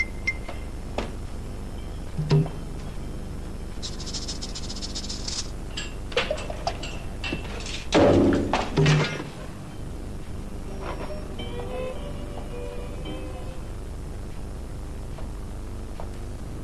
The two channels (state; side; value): identical; both; correlation 1.00